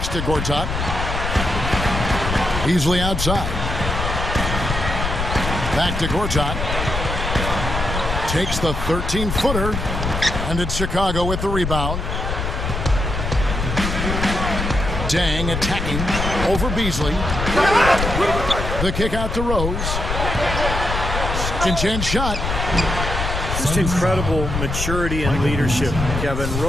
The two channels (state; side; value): noise; left; rumble, 3 dB below the sound